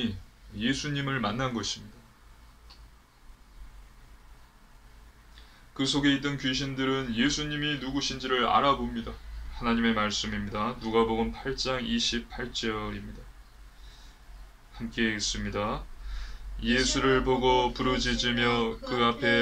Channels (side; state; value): both; identical; correlation 1.00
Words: 예수님을 만난 것입니다. 그 속에 있던 귀신들은 예수님이 누구신지를 알아봅니다. 하나님의 말씀입니다. 누가복음 8장 28절입니다. 함께 읽습니다. 예수를 보고 부르짖으며 그